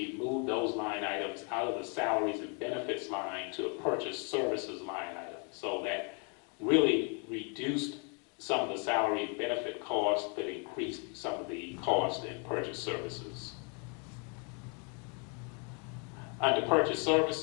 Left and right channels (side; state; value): right; quieter; 36.9 dB